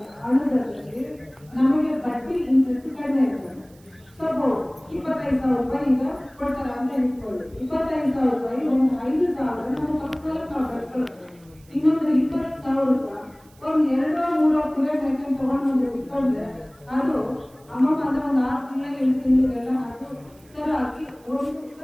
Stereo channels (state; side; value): noise; right; hiss, 29 dB below the sound